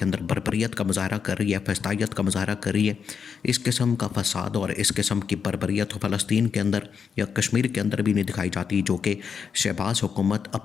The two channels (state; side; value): quieter; right; 6.5 dB